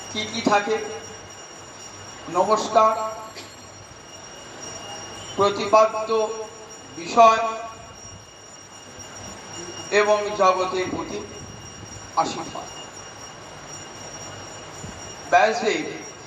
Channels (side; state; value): both; identical; correlation 1.00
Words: কি কি থাকে? নমস্কার, প্রতিপাদ্য বিষয় এবং জগতের প্রতি আশীর্বাদ। ব্যাসদেব